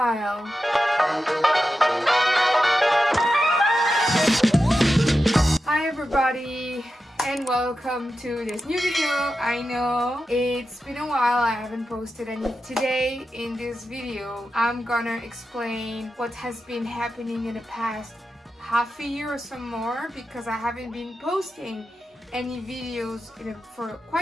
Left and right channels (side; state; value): both; normal; correlation 0.91